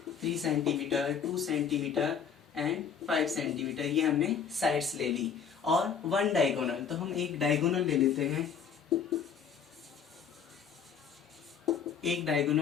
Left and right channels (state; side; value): quieter; right; 7.0 dB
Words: 3 centimetre, 2 centimetre and 5 centimetre, ये हमने साइड्स ले ली। और 1 डायगोनल, तो हम एक डायगोनल ले लेते हैं। एक